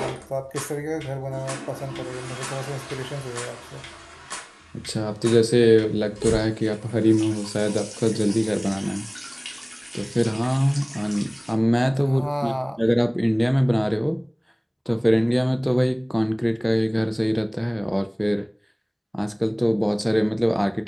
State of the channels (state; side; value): identical; both; correlation 1.00